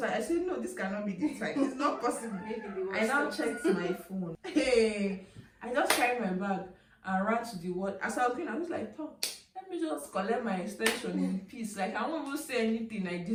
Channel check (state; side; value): identical; both; correlation 1.00